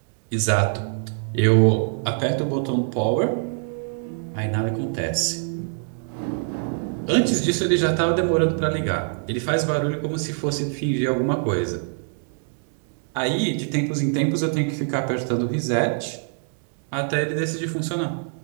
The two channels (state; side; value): silent; left; 62 dB below the other